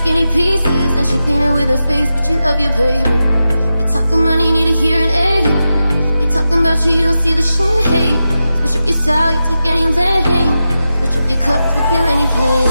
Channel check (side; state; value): both; inverted; correlation -0.91